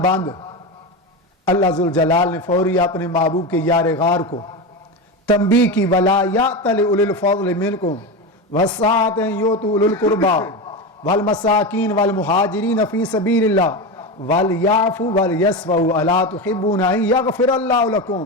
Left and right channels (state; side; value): normal; both; correlation 0.19